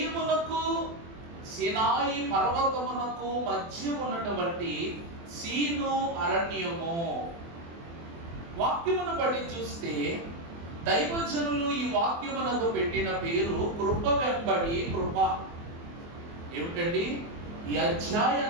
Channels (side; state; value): left; late; 24 ms